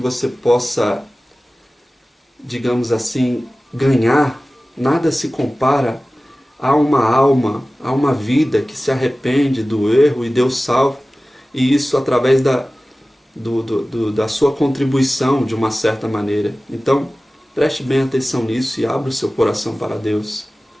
possa, digamos assim, ganhar, nada se compara a uma alma, a uma vida que se arrepende do erro e Deus salva, e isso através da da sua contribuição de uma certa maneira. Então, preste bem atenção nisso e abra o seu coração para Deus.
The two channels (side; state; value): both; normal; correlation 0.97